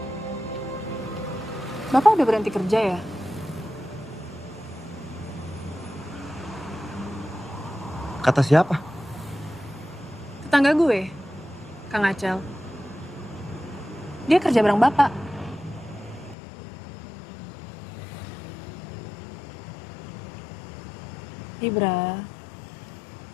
Bapak udah berhenti kerja ya? Kata siapa? Tetangga gue, Kang Acel. Dia kerja bareng Bapak. Ibra,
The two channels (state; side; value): drops out; right; at 16.4 s